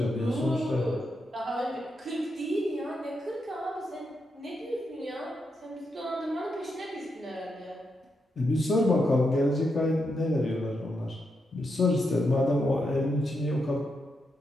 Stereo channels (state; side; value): normal; both; correlation 0.83